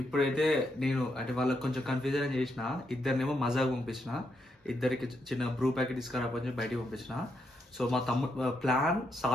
ఇప్పుడైతే నేను అంటే వాళ్ళకి కొంచెం కన్ఫ్యూజన్ చేసిన, ఇద్దరినేమో మజాకు పంపించిన, ఇద్దరికి చిన్న బ్రూ ప్యాకెట్ తీసుకురాపని చెప్పి బయటికి పంపించిన. సో మా తమ్ముడు ప్లాన్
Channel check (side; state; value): both; normal; correlation 0.80